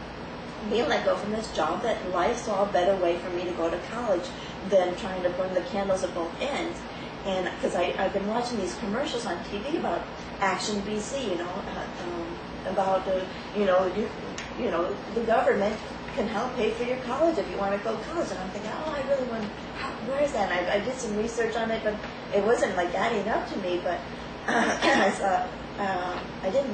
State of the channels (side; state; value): both; identical; correlation 1.00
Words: being let go from this job, that life saw a better way for me to go to college than trying to burn the candles at both ends. And because I've been watching these commercials on TV about Action BC, about the government can help pay for your college if you want to go to college. And I'm thinking, oh, I really want. Where is that? And I did some research on it, but it wasn't like adding up to me. But I